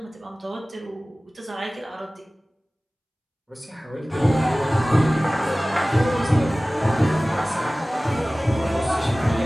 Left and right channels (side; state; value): both; normal; correlation 0.98